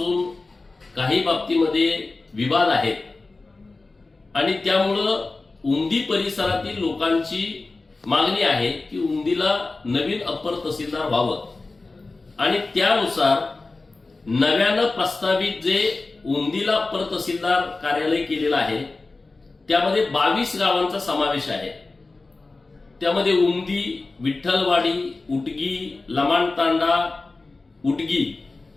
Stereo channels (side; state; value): right; quieter; 3.5 dB